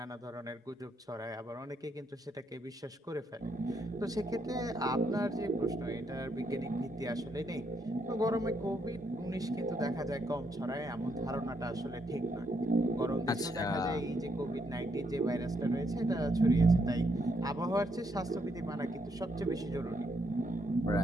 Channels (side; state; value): both; normal; correlation 0.75